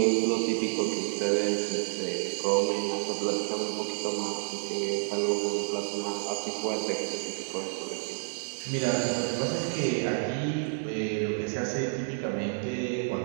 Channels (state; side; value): silent; left; digital silence